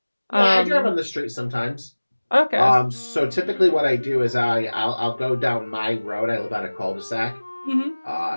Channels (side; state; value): both; inverted; correlation -1.00